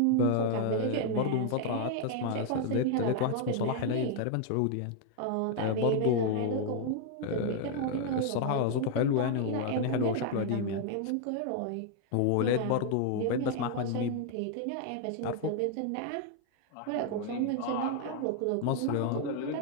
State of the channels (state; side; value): different; both; correlation 0.00